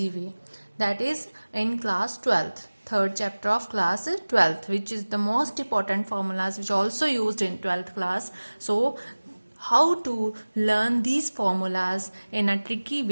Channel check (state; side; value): inverted; both; correlation -1.00